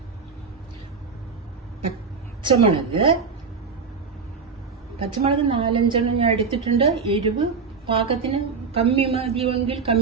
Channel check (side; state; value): left; quieter; 5.2 dB